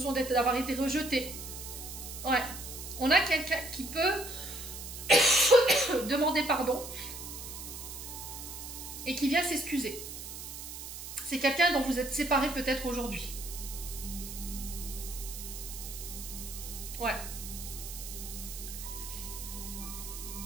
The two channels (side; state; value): right; noise; hiss, 9 dB below the sound